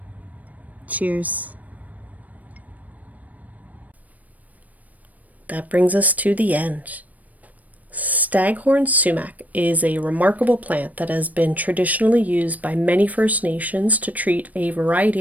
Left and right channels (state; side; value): late; left; 0.074 ms